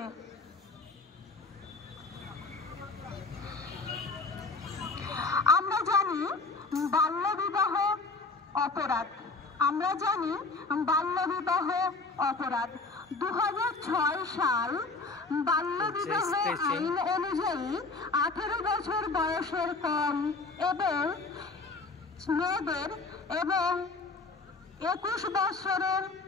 আমরা জানি বাল্যবিবাহ অপরাধ। 2006 সাল বাল্যবিবাহ আইন অনুযায়ী 18 বছর বয়সের কম এবং মেয়েদের এবং 21 বছরের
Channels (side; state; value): right; quieter; 3.8 dB